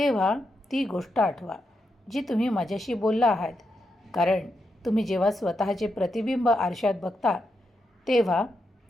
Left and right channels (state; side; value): normal; both; correlation 0.84